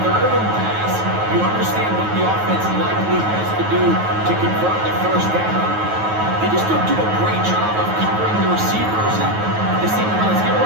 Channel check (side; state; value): left; late; 9.3 ms